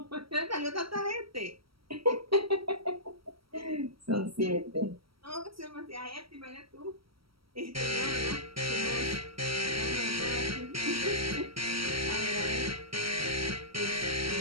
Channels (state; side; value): late; left; 0.75 ms